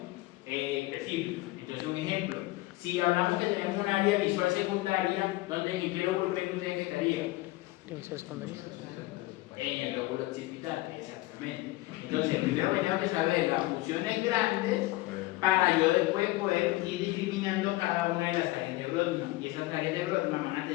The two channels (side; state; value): right; quieter; 19.4 dB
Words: específica. Entonces, un ejemplo, si hablamos que tenemos un área visual secundaria, ¿en qué lóbulo creen que ustedes que estaría? Visión secundaria. En el lóbulo occipital, exactamente. Entonces, primero tenemos que saber las funciones grandes para yo después poder ir discriminando cada una de las áreas de Brodmann. Y esas áreas de Brodmann van a